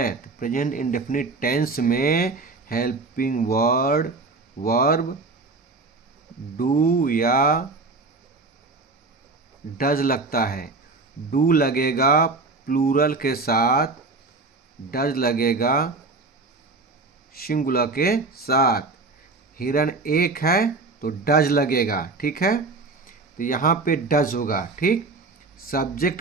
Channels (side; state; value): left; quieter; 3.7 dB